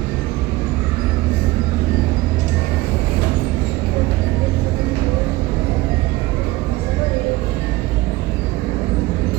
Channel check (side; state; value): left; quieter; 19.3 dB